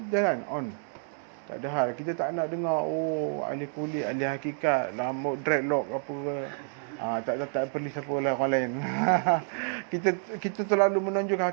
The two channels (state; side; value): silent; left; 59 dB below the other